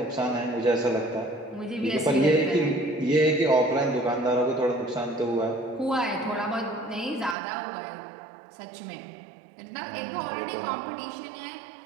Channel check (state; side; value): drops out; left; at 7.4 s